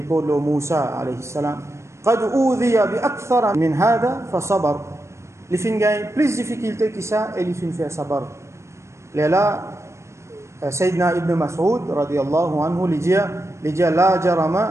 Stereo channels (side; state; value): left; late; 0.14 ms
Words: de Moussa alayhi salam. قد أوذي بأكثر من هذا فصبر. Il fin gagne plus de difficultés que ça et il fin faire sabar. Là, Sayyidina Ibn Mas'ud radiyallahu anhu lui dit la